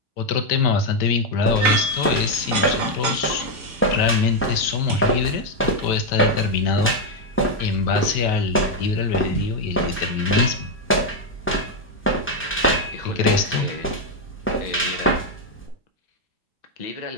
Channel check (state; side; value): normal; both; correlation 0.02